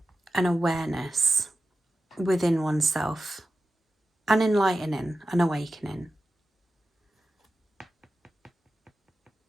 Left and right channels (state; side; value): normal; both; correlation 0.92